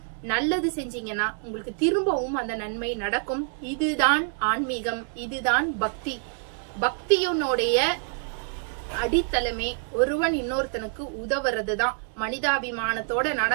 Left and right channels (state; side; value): silent; left; 56 dB below the other